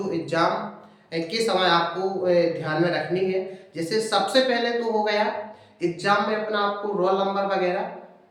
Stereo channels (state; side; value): identical; both; correlation 1.00